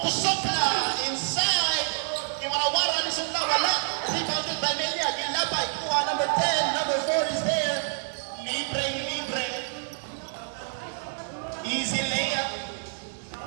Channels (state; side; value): silent; left; digital silence